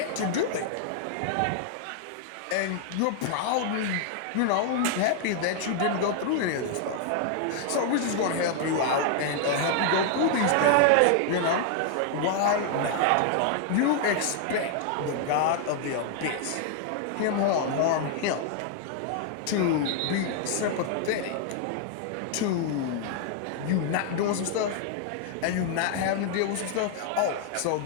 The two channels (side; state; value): both; different; correlation 0.00